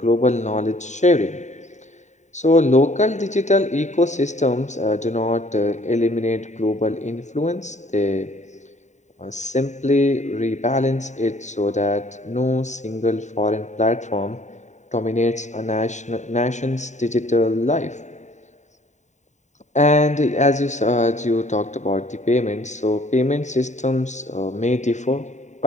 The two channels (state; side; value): late; right; 0.34 ms